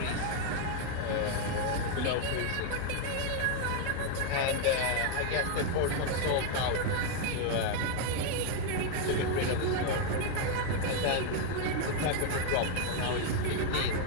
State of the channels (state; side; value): different; both; correlation 0.01